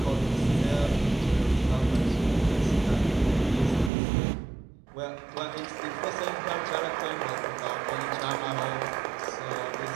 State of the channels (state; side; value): drops out; left; at 3.9 s